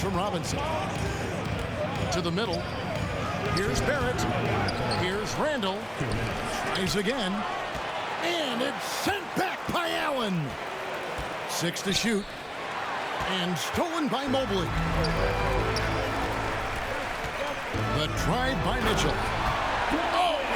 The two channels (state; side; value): identical; both; correlation 1.00